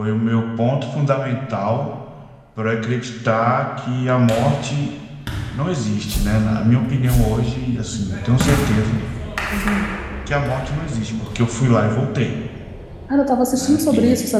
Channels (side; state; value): both; identical; correlation 1.00